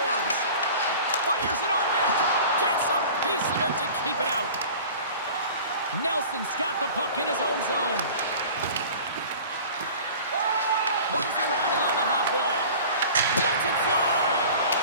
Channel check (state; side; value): inverted; both; correlation -0.41